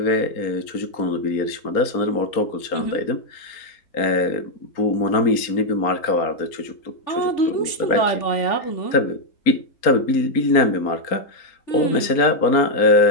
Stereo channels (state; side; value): late; right; 4.3 ms